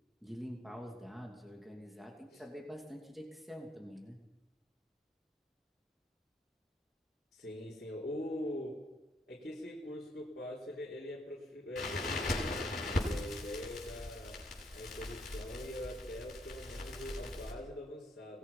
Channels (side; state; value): both; normal; correlation 0.72